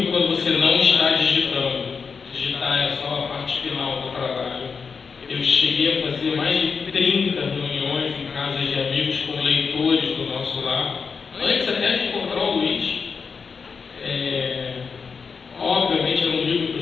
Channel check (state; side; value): quieter; right; 5.5 dB